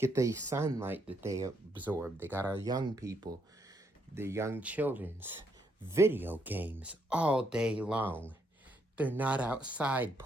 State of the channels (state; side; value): normal; both; correlation 0.75